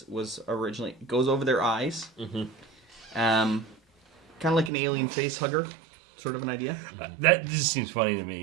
originally goes over their eyes, kind of like an alien face hugger, sort of an idea. That just seems funny to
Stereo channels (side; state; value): left; drops out; at 4.7 s